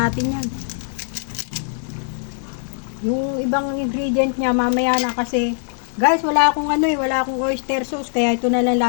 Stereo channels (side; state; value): right; silent; 65 dB below the other